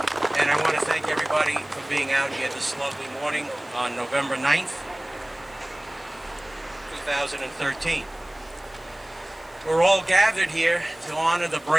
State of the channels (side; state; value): left; noise; hiss, 27 dB below the sound